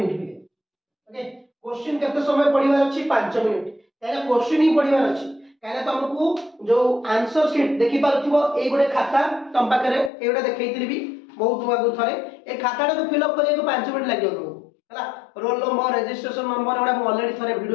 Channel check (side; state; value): right; drops out; at 10.1 s